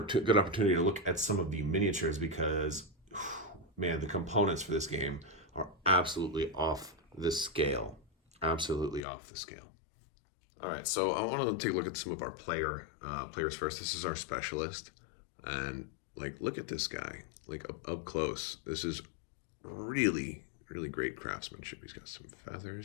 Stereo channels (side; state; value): right; drops out; at 9.0 s